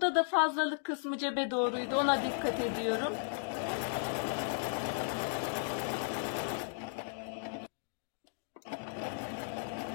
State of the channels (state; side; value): silent; right; digital silence